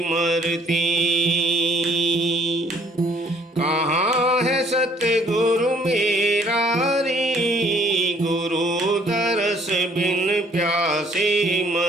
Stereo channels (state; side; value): normal; both; correlation 0.61